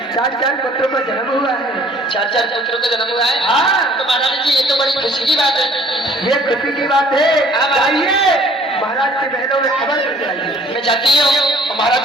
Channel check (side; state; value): both; normal; correlation 0.55